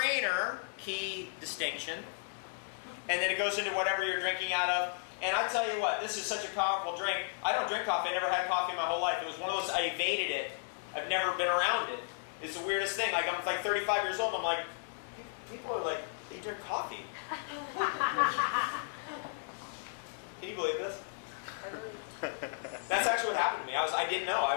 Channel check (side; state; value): right; silent; 55 dB below the other